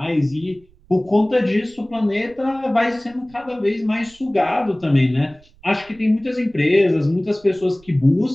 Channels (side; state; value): right; noise; rumble, 28 dB below the sound